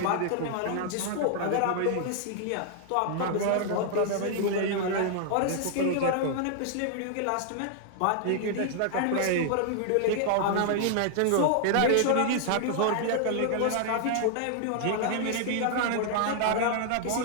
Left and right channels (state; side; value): different; both; correlation -0.01